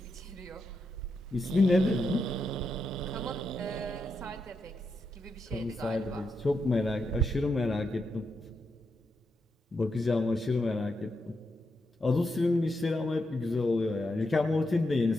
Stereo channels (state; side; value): normal; both; correlation 0.84